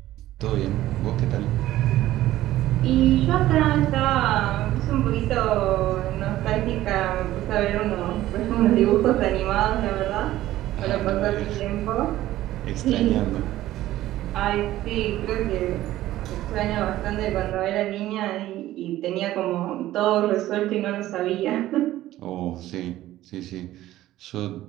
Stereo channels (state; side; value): quieter; left; 14.8 dB